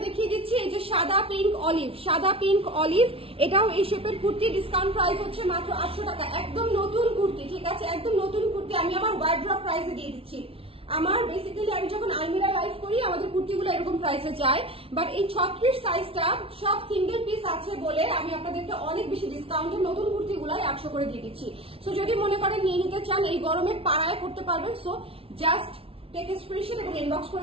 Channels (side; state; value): left; late; 0.27 ms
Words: দেখিয়ে দিচ্ছি এই যে সাদা পিঙ্ক অলিভ, এটাও এই শেপের কুর্তি, ডিসকাউন্ট প্রাইস হচ্ছে মাত্র 800 টাকা। একদম নতুন কুর্তি, ঠিক আছে, একদম নতুন কুর্তি। আমি আমার ওয়ার্ড্রপ প্রাইসে দিয়ে দিচ্ছি। আমার বেসিক্যালি আমি যখন আলমিরা লাইভ করি আমাদের কুর্তিগুলো এরকম প্রাইসে যায়, বাট এই 36 সাইজটা সব সিঙ্গেল পিস আছে বলে আমি আপনাদেরকে অনেক বেশি ডিসকাউন্টে নতুন কুর্তিগুলাই 800 করে দিয়ে দিচ্ছি। সো যদি মনে করেন নিয়ে নিতে চান, এই গরমে পাড়ায় পড়তে পারবেন। সো জাস্ট টেক স্ক্রিনশট এবং ইনবক্স করে